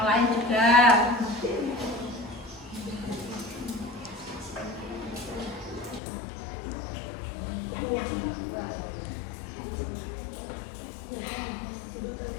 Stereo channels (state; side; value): drops out; right; at 6.0 s